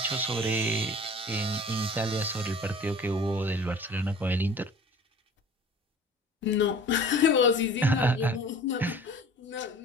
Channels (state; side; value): normal; both; correlation 0.45